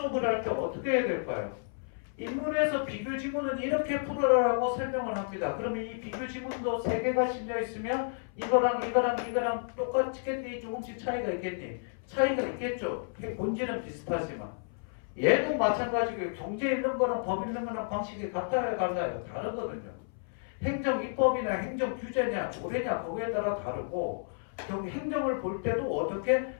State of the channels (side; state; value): right; silent; 57 dB below the other